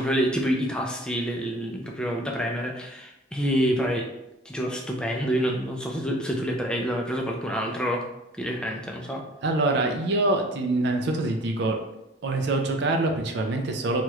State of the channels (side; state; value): both; normal; correlation 0.48